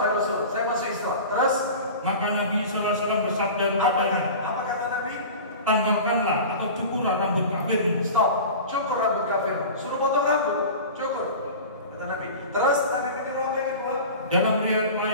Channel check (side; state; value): both; inverted; correlation -0.35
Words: Rasul. Saya masuk Islam. Terus maka Nabi SAW bersabda kepadanya, apa kata Nabi? tanggalkanlah atau cukurlah rambut kafirmu. Stop. Cukur rambut kafirmu. Suruh potong rambut. Cukur. Kata Nabi. Terus Nabi menyuruh apa yang kedua? Dalam riwayat